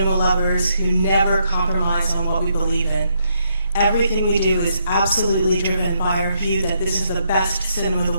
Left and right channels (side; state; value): both; inverted; correlation -0.76